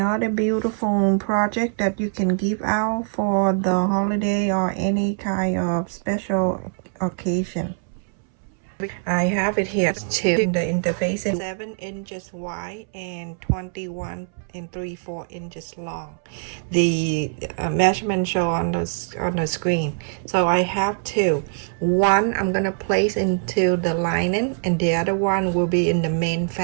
beautiful project that you can give out for the holiday or any kind of special occasion. I have it here too. The interface is 7 inches wide and 21 and 3/4 inches long. The measurement show on the screen. So I have two. One I'm gonna place into the lining, and the other one will be in the main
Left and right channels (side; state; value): left; silent; 63 dB below the other